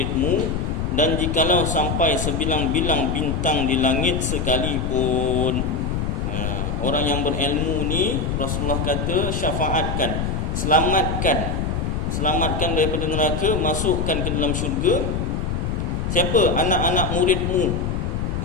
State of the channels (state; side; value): noise; left; rumble, 1 dB below the sound